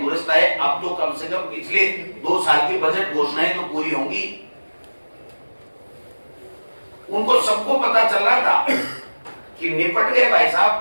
आए। अब तो कम से कम पिछले 2 साल की बजट घोषणाएं तो पूरी होंगी। उनको सबको पता चल रहा था कि निपट गए भाई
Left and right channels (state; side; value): inverted; both; correlation -1.00